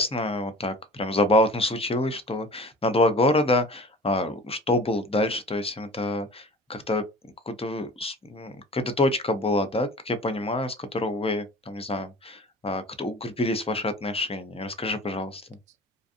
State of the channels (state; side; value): normal; both; correlation 0.42